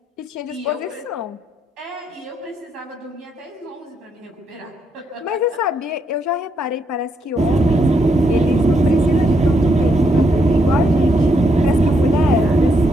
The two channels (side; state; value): both; normal; correlation 0.77